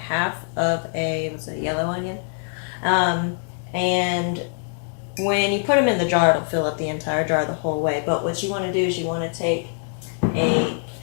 half of a yellow onion. And when you put them in the jar, it'll fill up the entire jar the whole way. But what you want to do is you want to take a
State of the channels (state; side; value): silent; right; 57 dB below the other